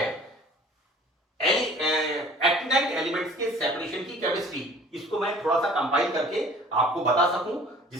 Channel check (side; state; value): both; normal; correlation 0.49